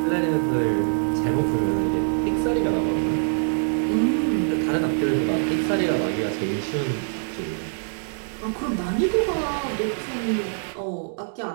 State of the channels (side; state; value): left; silent; digital silence